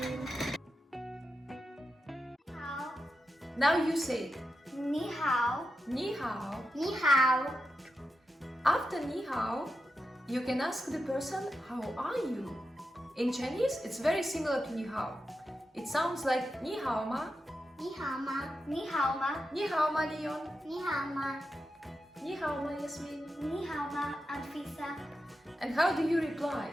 好。 Now you say it. 你好，你好. 你好。 After 你好, you can ask the person, how are you? In Chinese, it's very similar to 你好. It sounds like 你好吗?你好吗？你好吗？你好吗 Leon? 你好吗？你好吗 Yasmine? 你好吗，Anfisa？ And how do you reply?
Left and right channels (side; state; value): both; normal; correlation 0.89